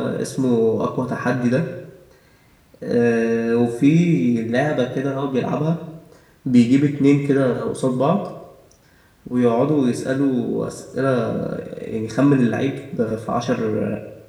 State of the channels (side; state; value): both; identical; correlation 1.00